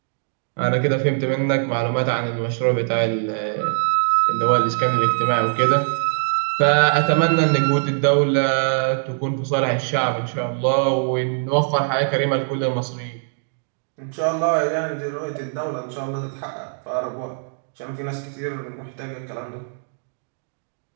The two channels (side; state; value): left; silent; digital silence